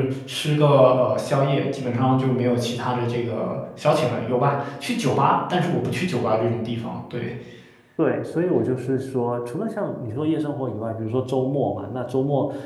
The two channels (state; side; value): identical; both; correlation 1.00